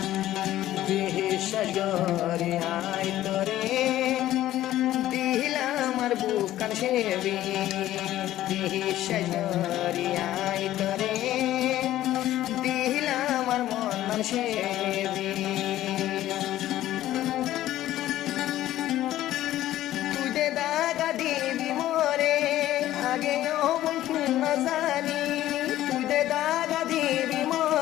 সাগরে আয় তোরে দিলাম আর বুকান সেবি সাগরে আয় তোরে দিলাম আর মন সেবি তুই দে দাগা দিবি মোরে আগে বন্ধু না জানি তুই দে দাগা দিবি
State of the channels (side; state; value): right; quieter; 13.9 dB